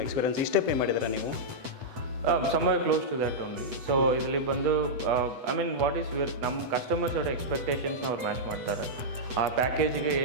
ಎಕ್ಸ್ಪೀರಿಯನ್ಸ್? ಇಷ್ಟೇ ಪೇ ಮಾಡಿದ್ದೀರಾ ನೀವು? somewhere close to that only. So ಇದರಲ್ಲಿ ಬಂದು ಐ ಮೀನ್ ವಾಟ್ ಈಸ್ ನಮ್ಮ ಕಸ್ಟಮರ್ಸ್ ಅವರ ಎಕ್ಸ್ಪೆಕ್ಟೇಷನ್ಸ್ನ ಅವ್ರು ಮ್ಯಾಚ್ ಮಾಡ್ತಾರೆ. ಆ ಪ್ಯಾಕೇಜಿಗೆ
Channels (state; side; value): late; left; 8.0 ms